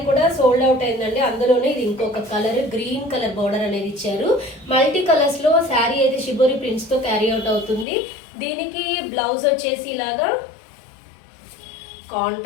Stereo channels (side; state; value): right; drops out; at 7.9 s